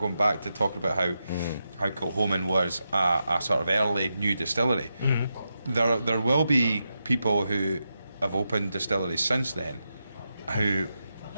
back to talking about how Kilchoman was a sort of early new distillery, there will be people who have opened distilleries since then who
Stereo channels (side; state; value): both; inverted; correlation -0.87